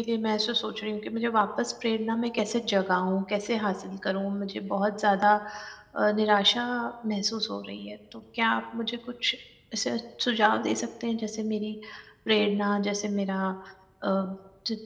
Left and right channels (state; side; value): identical; both; correlation 1.00